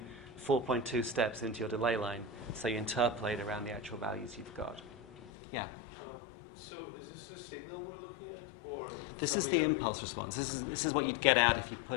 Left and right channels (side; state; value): right; drops out; at 5.3 s